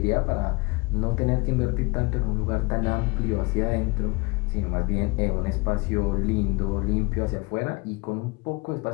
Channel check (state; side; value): quieter; right; 26.4 dB